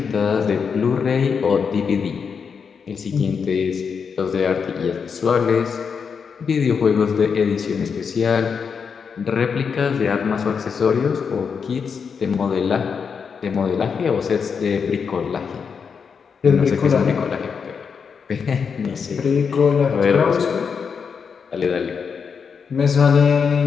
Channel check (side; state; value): right; quieter; 6.2 dB